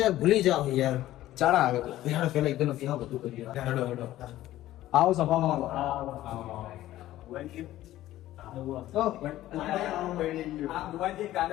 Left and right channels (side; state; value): right; quieter; 14.6 dB